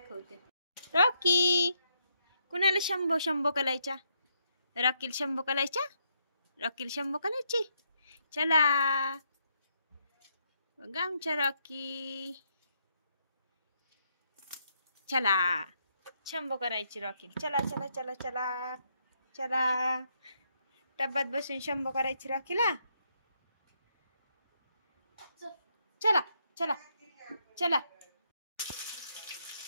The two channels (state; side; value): inverted; both; correlation -0.77